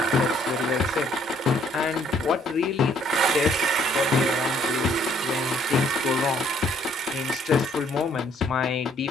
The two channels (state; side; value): normal; both; correlation 0.64